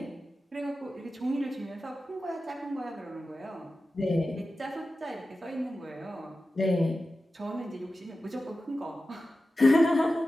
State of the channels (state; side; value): normal; both; correlation 0.94